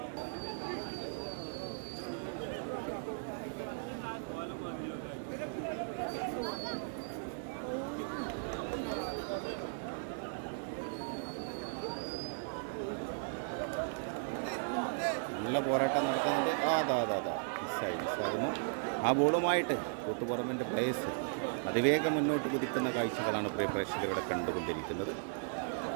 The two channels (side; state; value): left; silent; 53 dB below the other